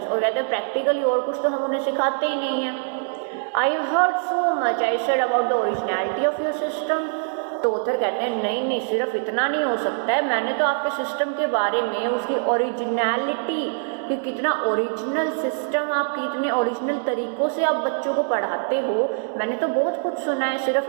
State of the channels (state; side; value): silent; left; 63 dB below the other